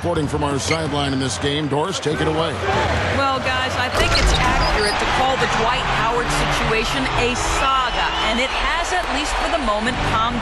from our sideline in this game. Doris, take it away. Well, guys, I think it's accurate to call the Dwight Howard situation situation a saga, and it has, at least for the moment, calmed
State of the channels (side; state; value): both; identical; correlation 1.00